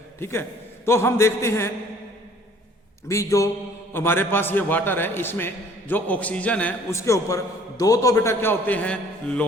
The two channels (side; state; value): both; normal; correlation 0.56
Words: ठीक है, तो हम देखते हैं भी जो हमारे पास ये वाटर है, इसमें जो ऑक्सीजन है उसके ऊपर दो तो बेटा क्या होते हैं,